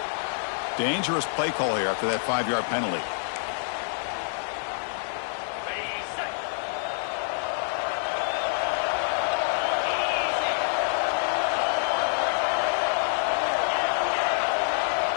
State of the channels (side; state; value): right; silent; digital silence